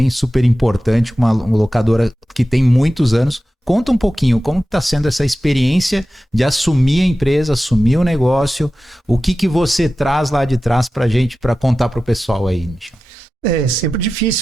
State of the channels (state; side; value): normal; both; correlation 0.94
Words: super importante, uma locadora que tem muitos anos. Conta um pouquinho como está sendo essa experiência de assumir a empresa, assumir o negócio, o que você traz lá de trás para a gente, para contar para o pessoal aí, Michel. É sempre